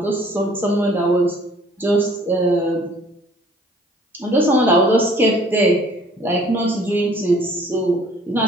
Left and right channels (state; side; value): normal; both; correlation 0.56